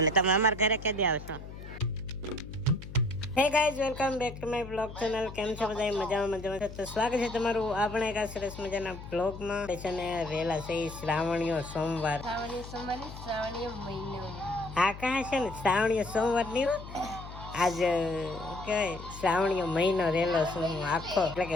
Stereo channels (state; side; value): noise; left; hum, 12 dB below the sound